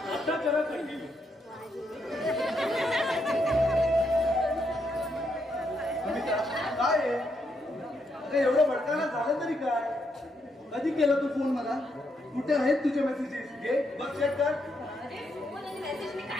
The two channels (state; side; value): normal; both; correlation 0.78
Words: आता करा कंटिन्यू काय आहे अरे एवढं भडकायला झालं तरी काय कधी केला तू फोन मला कुठे आहेत तुझे मेसेजेस घे बघ चेक कर अरे फोन आणि मेसेज मी